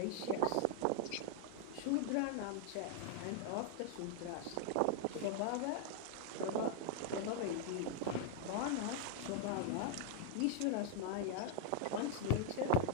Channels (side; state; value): both; different; correlation 0.00